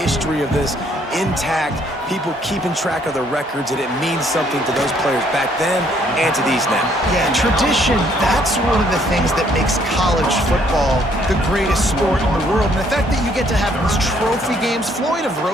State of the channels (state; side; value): normal; both; correlation 0.66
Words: of this intact, people keeping track of the records, and it means something to those players back then and to these now. Yeah, tradition, that's one of the things that makes college football the greatest sport in the world. And the fact that you get to have these trophy games, Floyd of